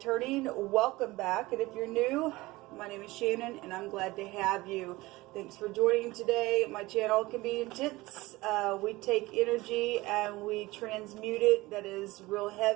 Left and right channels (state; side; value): quieter; left; 20.2 dB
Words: welcome back. And if you're new, my name is Shannon and I'm glad to have you. Thanks for joining today. My channel can be intense. We take energy and we transmute it that is real